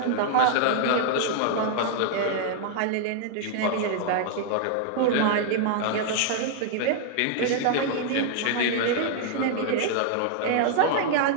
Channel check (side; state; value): both; different; correlation -0.01